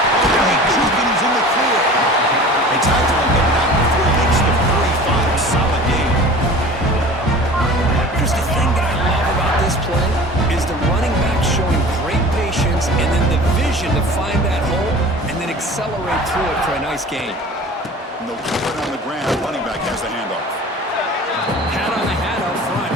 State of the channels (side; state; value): both; normal; correlation 0.41